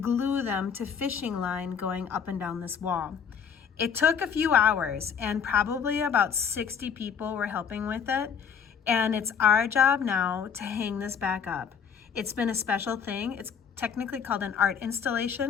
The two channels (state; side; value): quieter; right; 7.1 dB